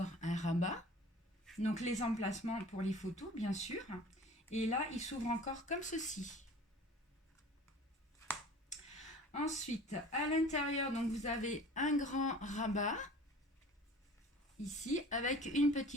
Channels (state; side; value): normal; both; correlation 0.44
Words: un rabat. Donc les emplacements pour les photos, bien sûr. Et là, il s'ouvre encore comme ceci. Ensuite, à l'intérieur, donc vous avez un grand rabat. Ici, avec une